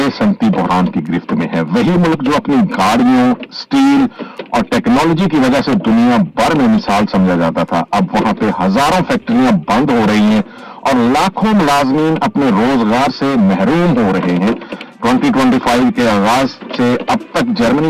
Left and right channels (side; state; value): both; identical; correlation 1.00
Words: सनती बहरान की गिरफ्त में है। वही मुल्क जो अपनी गाड़ियों, स्टील और टेक्नोलॉजी की वजह से दुनिया भर में मिसाल समझा जाता था, अब वहां पे हजारों फैक्ट्रियां बंद हो रही हैं और लाखों मुलाजमीन अपने रोजगार से महरूम हो रहे हैं। 2025 के आगाज से अब तक